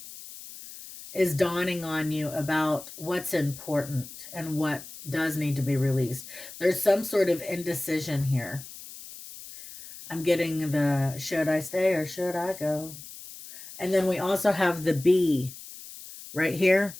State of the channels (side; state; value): left; noise; hiss, 15 dB below the sound